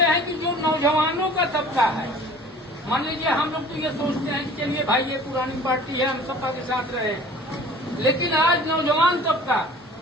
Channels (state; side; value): normal; both; correlation 0.47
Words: हैं कि जो नौजवानों का तबका है, मान लीजिए हम लोग तो ये सोचते हैं कि चलिए भाई ये पुरानी पार्टी है, हम सपा के साथ रहे, लेकिन आज नौजवान तबका